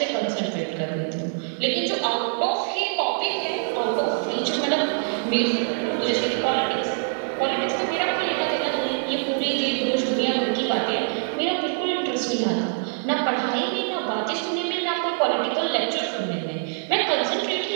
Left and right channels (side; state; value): left; silent; 62 dB below the other